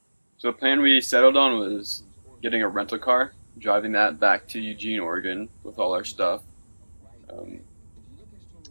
the plan we settled on was getting a rental car, driving that back to Eugene, Oregon with all our stuff.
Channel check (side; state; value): both; inverted; correlation -1.00